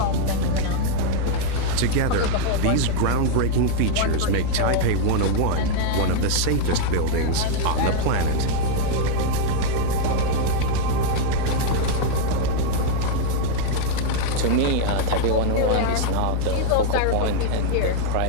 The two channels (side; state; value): both; different; correlation 0.00